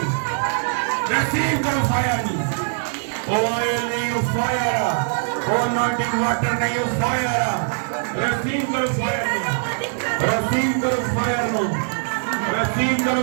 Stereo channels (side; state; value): left; silent; digital silence